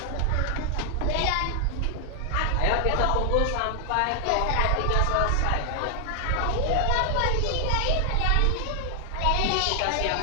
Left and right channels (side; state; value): both; different; correlation 0.00